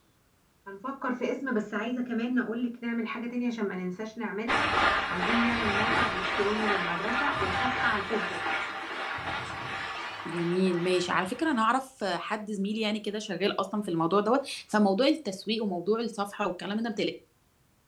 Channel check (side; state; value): both; identical; correlation 1.00